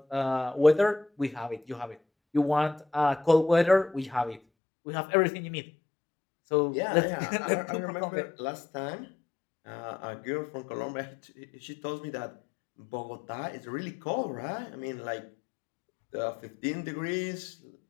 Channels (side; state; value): right; drops out; at 4.4 s